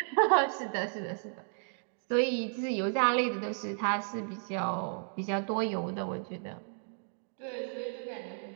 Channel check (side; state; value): left; silent; 56 dB below the other